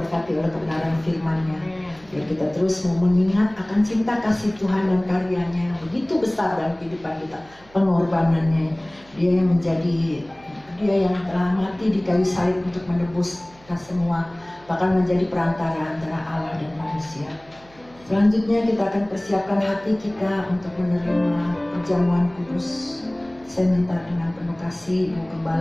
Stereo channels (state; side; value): noise; right; hum, 26 dB below the sound